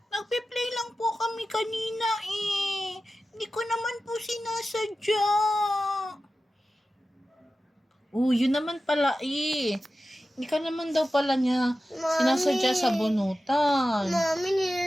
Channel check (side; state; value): both; normal; correlation 0.94